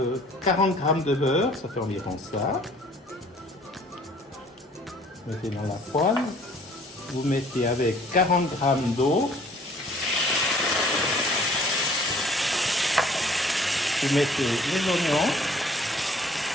40 grammes de beurre, ça fait environ ça. Mettez dans la poêle. Vous mettez avec 40 grammes d'eau. Vous mettez les oignons.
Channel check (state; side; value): normal; both; correlation 0.56